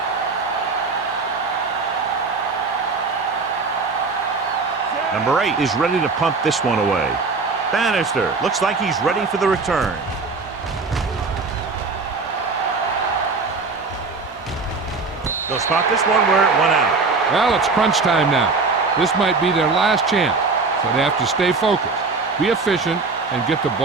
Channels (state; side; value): quieter; left; 4.2 dB